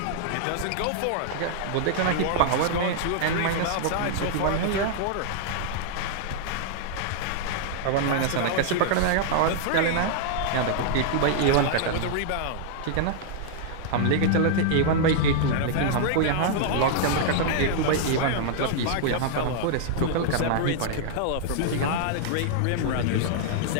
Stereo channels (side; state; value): both; different; correlation -0.01